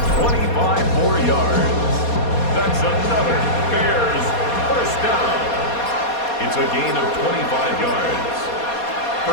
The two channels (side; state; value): right; late; 4.2 ms